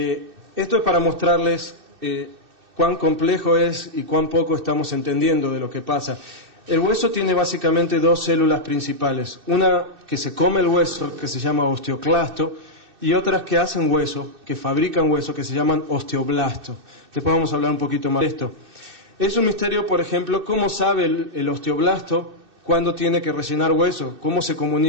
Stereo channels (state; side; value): late; left; 2.6 ms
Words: es para mostrarles cuán complejo es y cuán poco estamos entendiendo de lo que pasa. El hueso tiene básicamente dos células principales. Una que se come el hueso, que se llama osteoclasto, y otras que hacen hueso, que fabrican hueso, que se llaman osteoblasto. Después vamos a hablar un poquito más de esto. Es un misterio, por ejemplo, cómo sabe el osteoblasto cuándo tiene que rellenar hueso, cómo se